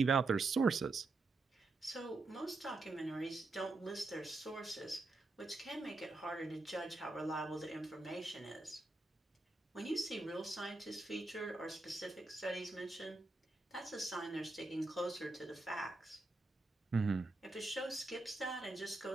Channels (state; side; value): quieter; left; 3.2 dB